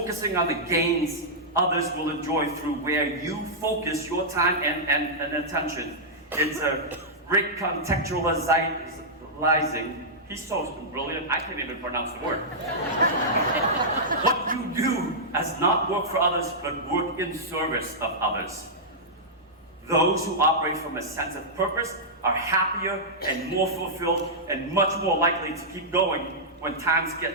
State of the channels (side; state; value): both; normal; correlation -0.10